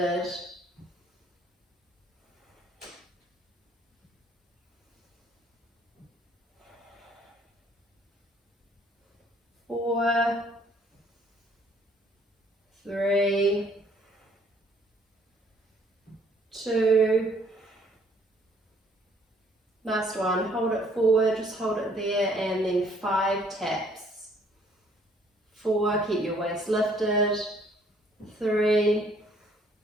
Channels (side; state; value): both; normal; correlation 0.62